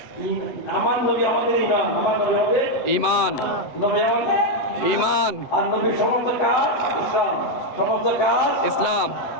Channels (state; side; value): late; right; 7.8 ms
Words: আমার নবী আমাদের ইমান, আমার নবী আমাদের ঈমান, নবী আমাদের ঈমান। আর নবীর সমস্ত কাজ ইসলাম, সমস্ত কাজ ইসলাম,